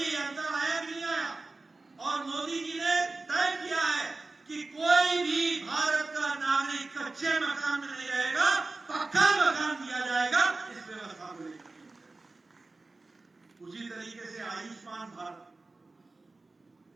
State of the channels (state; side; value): quieter; left; 3.4 dB